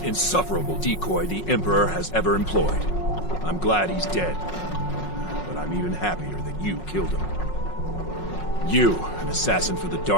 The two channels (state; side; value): late; right; 5.5 ms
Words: insufferable decoy the Emperor has ever employed. I'm glad he's dead. But I'm even happier that you killed him. You, an assassin for the